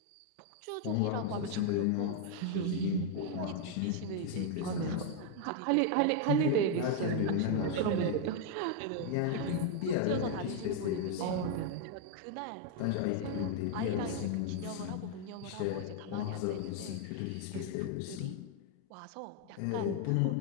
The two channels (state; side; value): different; both; correlation 0.00